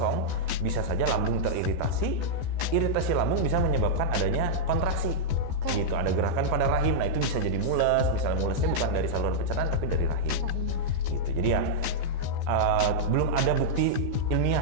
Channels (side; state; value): left; late; 14 ms